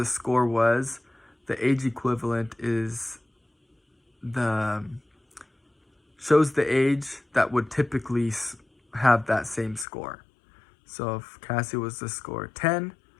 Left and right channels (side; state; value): right; drops out; at 9.9 s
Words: score was, the age equivalent shows the age that would typically have that same score. So if Cassie was to score 10